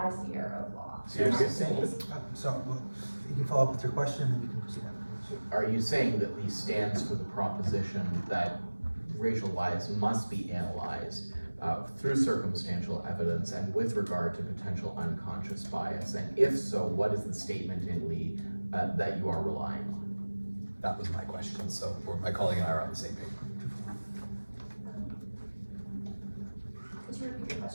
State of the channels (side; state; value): both; inverted; correlation -1.00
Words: as the error of law. So you're saying So you can follow up with your question and you can proceed afterwards. Are you saying that Lee stands for the proposition that racial bias must be analyzed through circumstantial evidence and with regard to potential unconscious bias? And if so, what is the statement in Lee that you are relying on? That was my question, so my colleague and I are on the same page. Could you repeat your